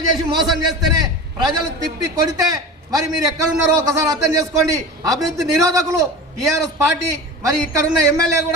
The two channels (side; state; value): both; normal; correlation 0.32